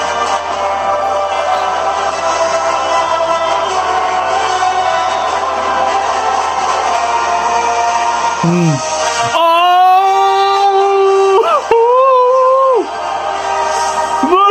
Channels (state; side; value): identical; both; correlation 1.00